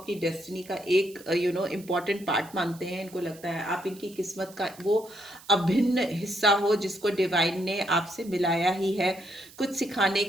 डेस्टिनी का एक इम्पॉर्टेंट पार्ट मानते हैं, इनको लगता है आप इनकी किस्मत का वो अभिन्न हिस्सा हो जिसको डिवाइन ने आपसे मिलाया ही है, कुछ सिखाने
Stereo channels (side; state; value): right; noise; hiss, 21 dB below the sound